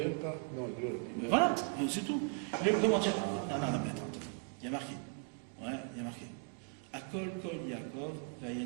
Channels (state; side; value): quieter; left; 38.3 dB